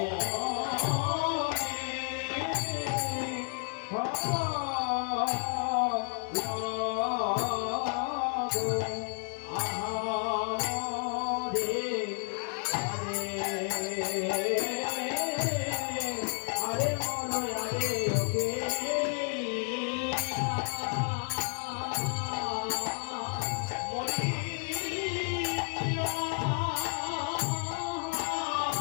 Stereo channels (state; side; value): silent; right; 57 dB below the other